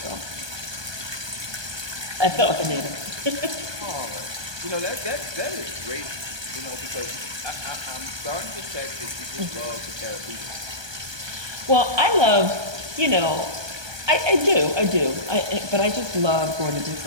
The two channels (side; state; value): left; late; 1.2 ms